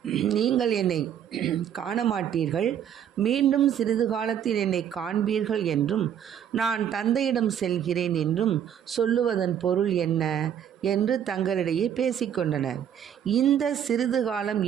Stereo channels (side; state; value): left; quieter; 9.3 dB